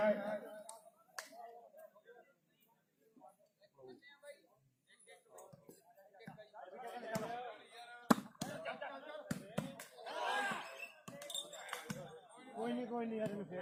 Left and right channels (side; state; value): both; identical; correlation 1.00